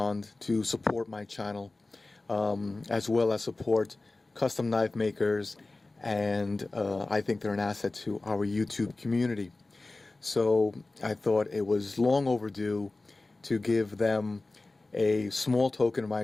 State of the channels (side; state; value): right; quieter; 3.2 dB